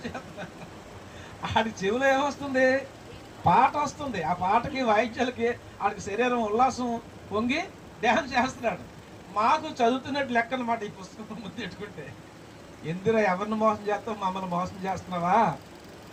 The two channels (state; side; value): identical; both; correlation 1.00